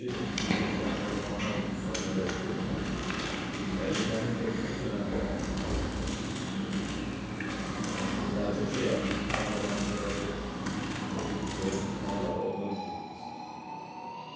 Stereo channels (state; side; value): identical; both; correlation 1.00